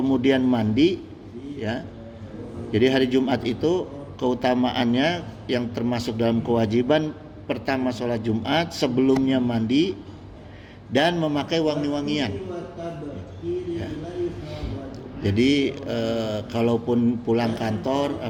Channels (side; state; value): both; identical; correlation 1.00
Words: mandi ya. Jadi hari Jumat itu keutamaannya yang termasuk dalam kewajiban pertama sholat Jumat, sebelumnya mandi dan memakai wangi-wangian ya. Jadi kalaupun pulang kantor